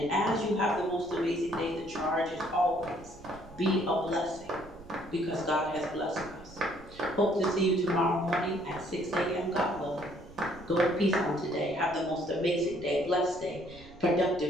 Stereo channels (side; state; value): right; noise; rumble, 20 dB below the sound